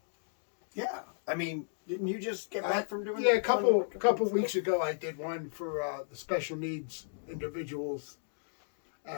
Yeah. I mean, didn't you just get back from doing a couple weeks ago I did one for the special needs individuals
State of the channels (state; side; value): silent; right; digital silence